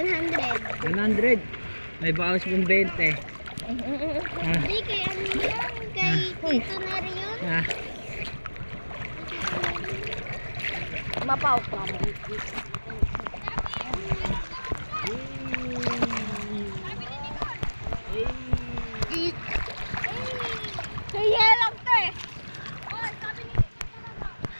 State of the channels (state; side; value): inverted; both; correlation -1.00